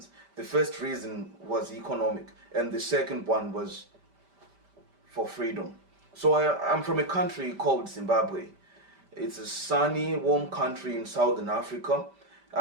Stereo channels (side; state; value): left; late; 5.1 ms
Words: The first reason was economic, and the second one was for freedom. So I'm from a country called Zimbabwe. It's a sunny, warm country in southern Africa.